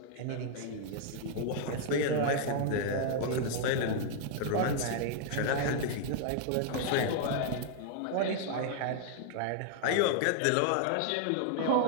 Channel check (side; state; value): both; different; correlation 0.00